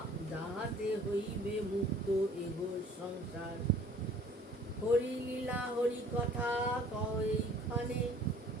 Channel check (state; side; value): normal; both; correlation 0.52